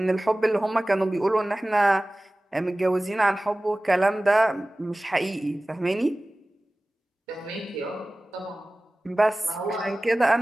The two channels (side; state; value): both; normal; correlation 0.98